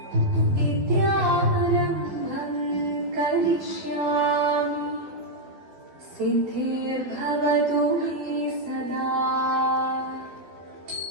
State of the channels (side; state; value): left; late; 12 ms